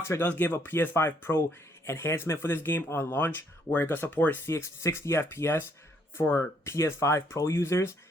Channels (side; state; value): both; normal; correlation 0.68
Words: does give a PS5 Pro enhancement for this game on launch, where it can support 60 FPS for PS5 Pro users.